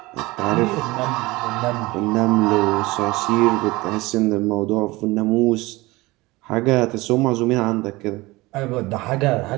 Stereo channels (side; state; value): left; quieter; 21.1 dB